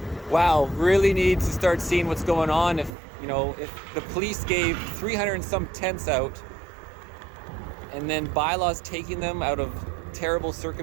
Wow, really need to start seeing what's going on. If the police gave 300 and some tents out, and then bylaws taking them out of terrible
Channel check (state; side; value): drops out; left; at 2.9 s